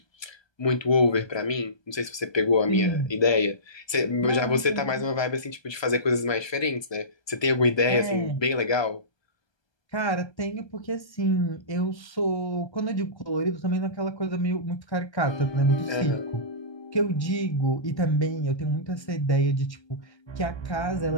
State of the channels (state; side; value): late; right; 1.2 ms